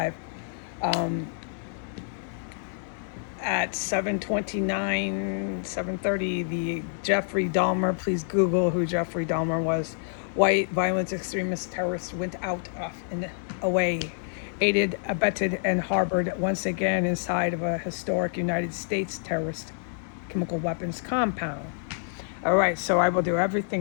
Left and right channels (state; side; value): silent; right; digital silence